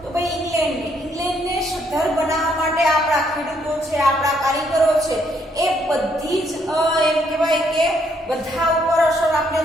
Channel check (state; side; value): normal; both; correlation 0.71